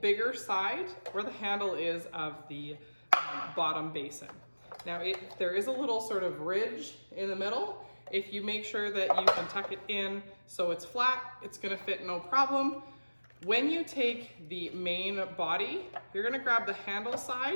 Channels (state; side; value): inverted; both; correlation -1.00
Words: bigger side where the handle is of the bottom basin. Now, there is a little sort of ridge in the middle. If you make sure that you can tuck it in so it's flat, it's gonna fit no problem. When you take the main body, you're gonna grab the handle